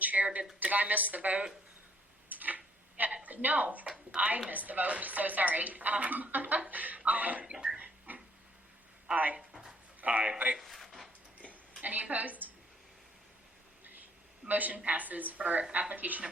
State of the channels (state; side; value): normal; both; correlation 0.65